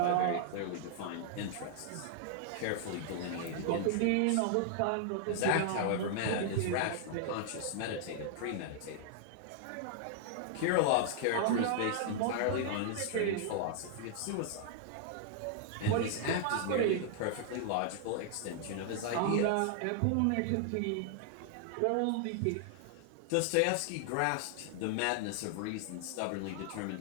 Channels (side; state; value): both; different; correlation 0.00